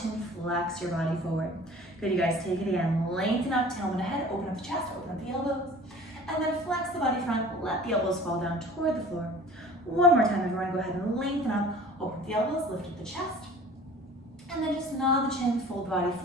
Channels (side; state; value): both; normal; correlation 0.45